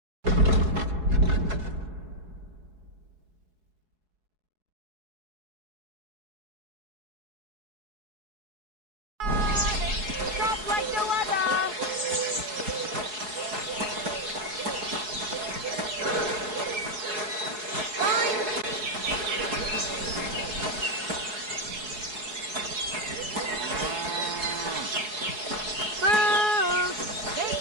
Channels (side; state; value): left; late; 4.7 ms